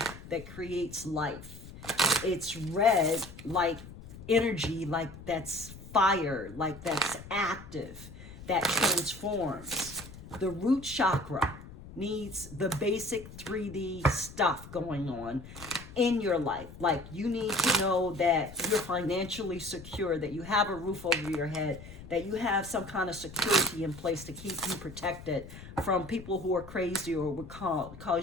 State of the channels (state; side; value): noise; left; rumble, 15 dB below the sound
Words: that creates life. It's red like energy, like that's fire, like that's active, that transforms. The root chakra needs the basic 3D stuff going on in your life. Like, you need to know that you're financially secure, that you have a roof over your head, that you have some kind of security in place to keep you protected from people who are crazy or would